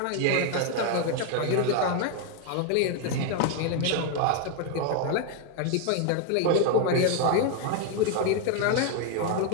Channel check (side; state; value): both; different; correlation 0.01